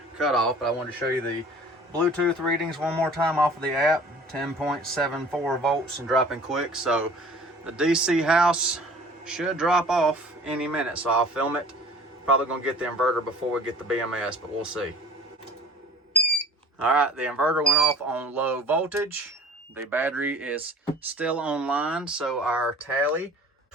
cutoff. But I wanted to show you the Bluetooth readings one more time off of the app. 10.74 volts and dropping quick. So the DCHOUSE should drop off any minute, so I'll film it. Probably gonna get the inverter before we get the BMS, but we'll see. All right, the inverter went off on low voltage. The battery is still online, so our tally,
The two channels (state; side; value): normal; both; correlation 0.46